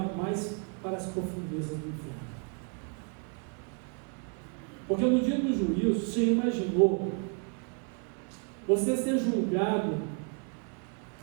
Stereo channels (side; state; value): left; quieter; 38.0 dB